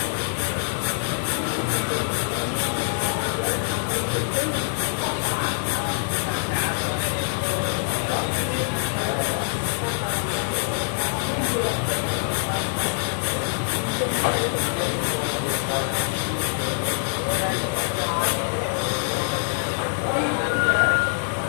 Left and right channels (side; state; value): right; silent; digital silence